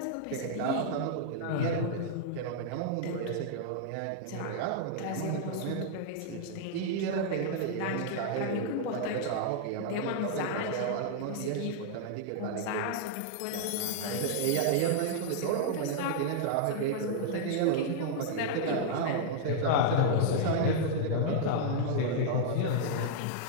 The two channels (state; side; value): different; both; correlation -0.01